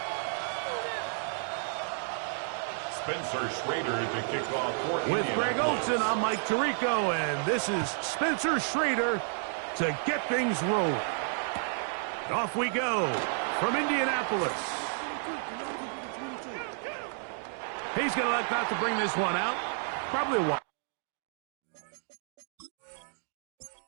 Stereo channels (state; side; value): silent; left; 57 dB below the other